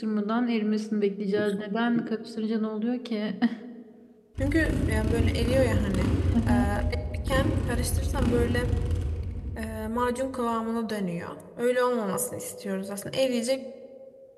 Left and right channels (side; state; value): both; identical; correlation 1.00